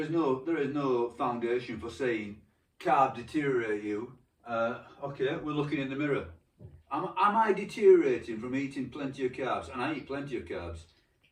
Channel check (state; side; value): identical; both; correlation 1.00